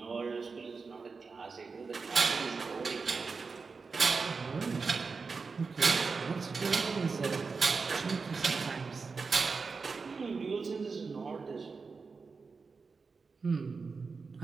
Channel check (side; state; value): left; quieter; 4.7 dB